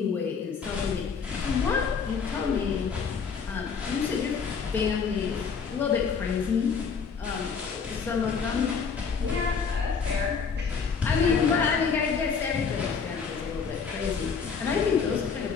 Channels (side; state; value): right; quieter; 5.9 dB